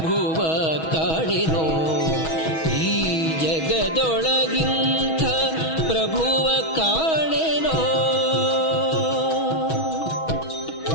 ಕಾಣಿನೋ ಈ ಜಗದೊಳಗಿಂಥ ಪ್ರಭುವ ಕಾಣೆನೋ.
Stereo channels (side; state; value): right; late; 6.2 ms